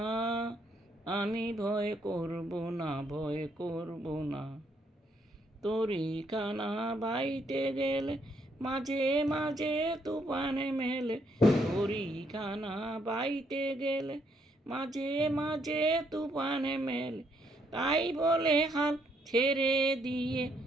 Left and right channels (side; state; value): both; normal; correlation 0.72